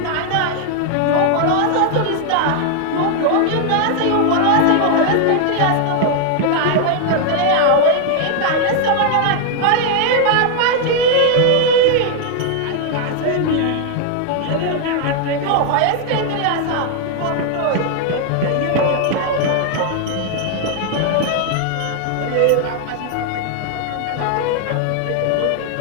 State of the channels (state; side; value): different; both; correlation 0.00